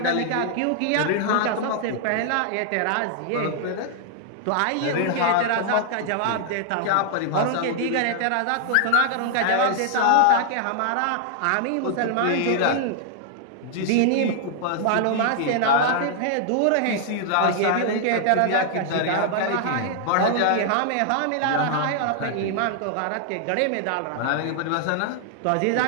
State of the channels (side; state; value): both; different; correlation -0.01